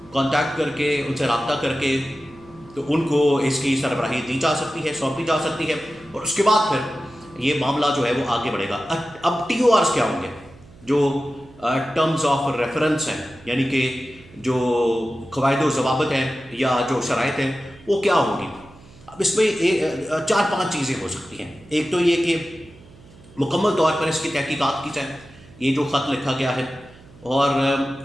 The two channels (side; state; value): right; noise; hum, 23 dB below the sound